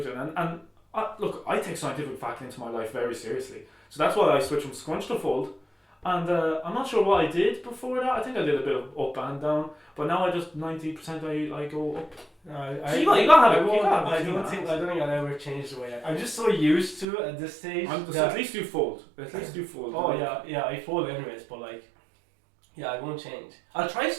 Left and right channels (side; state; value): left; drops out; at 17.1 s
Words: And look, I take scientific fact into my life very seriously, so that's why I switched from scrunch to fold. And I'm not sure what I did before that. I think I did a bit of up and down, but now I just 90% I go up. No, So you gotta have it. I don't think I'll ever change the way I'm just so used to it at this stage. At least you fold. At least you fold. Oh yeah, I fold anyways, but like, yeah, I won't change. I'll try